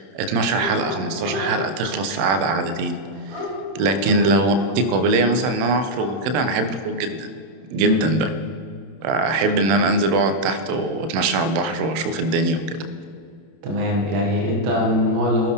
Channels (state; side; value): late; left; 31 ms